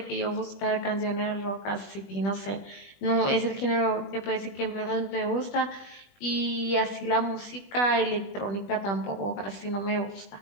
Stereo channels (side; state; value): right; late; 20 ms